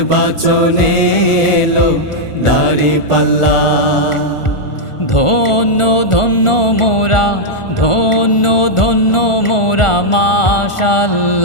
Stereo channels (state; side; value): late; right; 1.4 ms